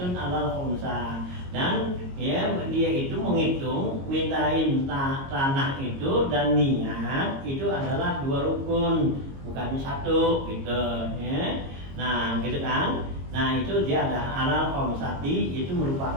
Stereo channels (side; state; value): left; late; 22 ms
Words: alal khumsa, dan ya dia itu menghitung mintain tanah itu dan niat itu adalah 2 rukun, bukannya 1 gitu, ya. Nah gitu kan. Nah itu dia ada alal khomsati, itu